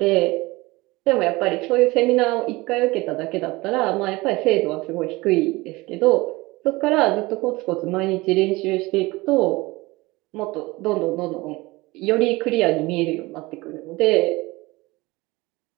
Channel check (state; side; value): quieter; left; 21.7 dB